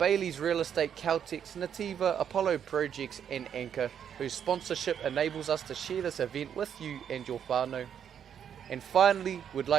Real Estate, Caltex, Nativa, Apollo Projects and Anchor, whose sponsorship enables us to share this event with you and your whānau. And finally, we'd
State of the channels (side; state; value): left; quieter; 8.6 dB